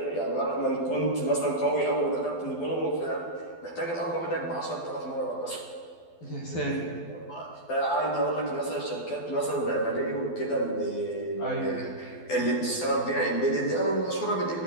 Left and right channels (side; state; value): right; late; 12 ms